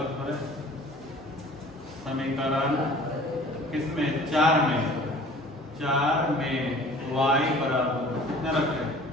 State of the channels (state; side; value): normal; both; correlation 0.48